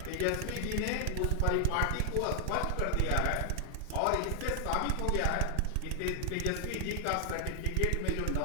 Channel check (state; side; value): different; both; correlation 0.00